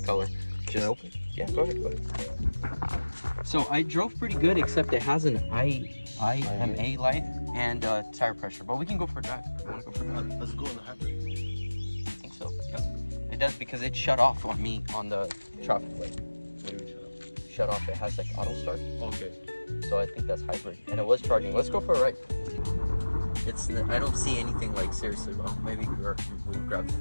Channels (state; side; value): inverted; both; correlation -1.00